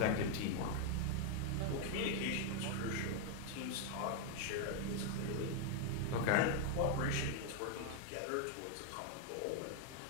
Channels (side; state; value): both; different; correlation 0.00